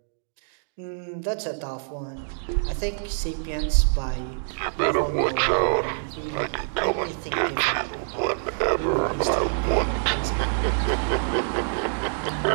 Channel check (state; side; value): silent; left; digital silence